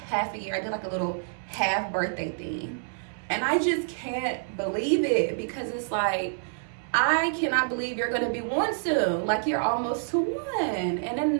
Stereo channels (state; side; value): silent; left; 60 dB below the other